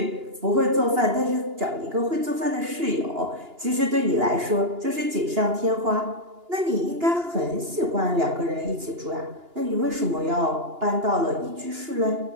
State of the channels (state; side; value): late; left; 2.9 ms